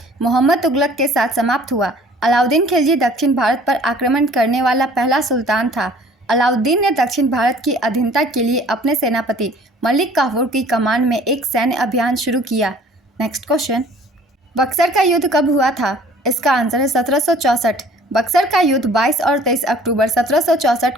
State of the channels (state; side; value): normal; both; correlation 0.52